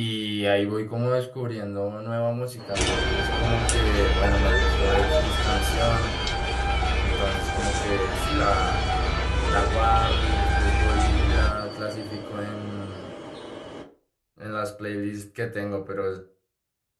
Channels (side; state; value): both; identical; correlation 1.00